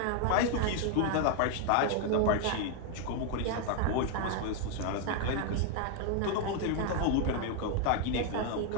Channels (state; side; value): different; both; correlation 0.00